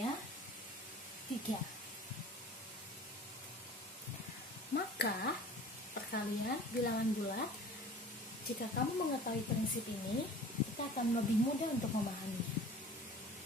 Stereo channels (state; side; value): normal; both; correlation 0.44